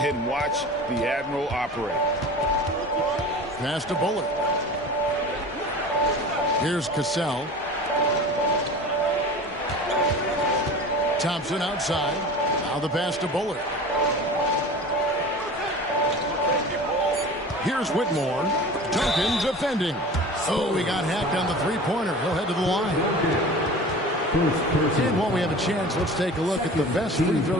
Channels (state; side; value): normal; both; correlation 0.37